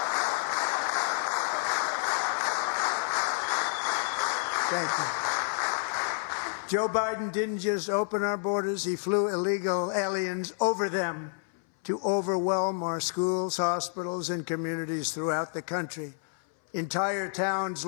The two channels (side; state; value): right; silent; 58 dB below the other